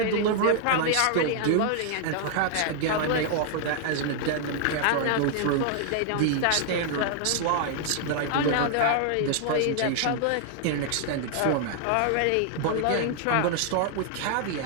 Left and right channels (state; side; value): different; both; correlation 0.00